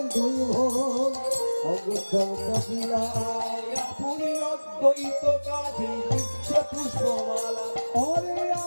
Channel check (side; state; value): both; inverted; correlation -1.00